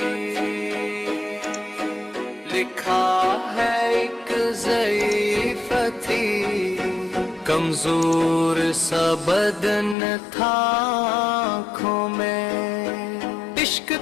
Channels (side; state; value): right; drops out; at 10.0 s